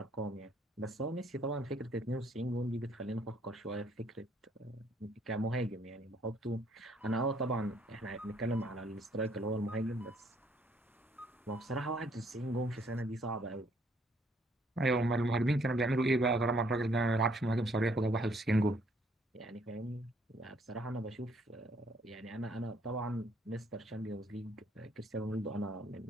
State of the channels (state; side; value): normal; both; correlation 0.66